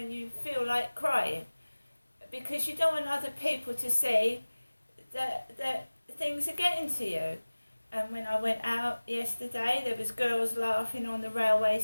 you feel like crying, because you don't want other people to see that things are getting to you. And when I went out yesterday, there was girls laughing on the railway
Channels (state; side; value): inverted; both; correlation -1.00